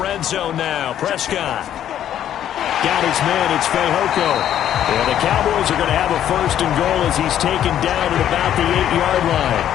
zone now, Prescott. Got his man, it's Fehoko. And the Cowboys are going to have a 1st and goal as he's taken down at about the 8-yard line.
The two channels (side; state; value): right; quieter; 10.8 dB